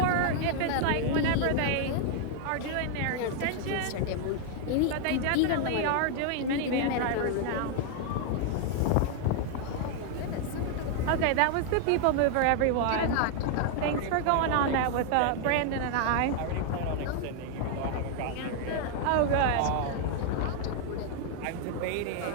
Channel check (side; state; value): both; different; correlation 0.00